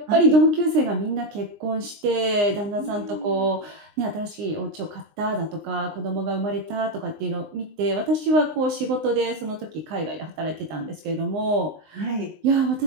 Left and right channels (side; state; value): left; late; 20 ms